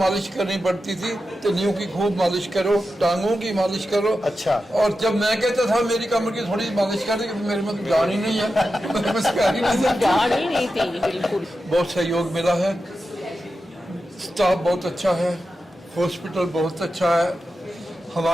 करनी पड़ती थी, तलियों की खूब मालिश करो, टांगों की मालिश करो। अच्छा। और जब मैं कहता था मेरी कमर की थोड़ी मालिश कर दे, मेरे में तो जान ही नहीं है, मेरे में सिखा ही नहीं जान ही नहीं थी बिल्कुल। बहुत सहयोग मिला है, स्टाफ बहुत अच्छा है, हॉस्पिटल बहुत अच्छा है।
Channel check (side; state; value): both; normal; correlation 0.91